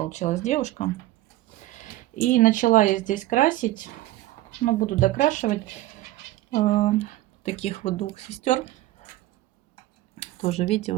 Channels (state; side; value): quieter; left; 16.2 dB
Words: девушка. И начала я здесь красить. Ну, буду докрашивать таких вот двух сестер. Тоже, видите,